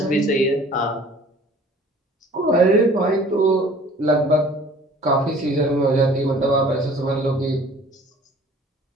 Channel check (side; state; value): both; normal; correlation 0.50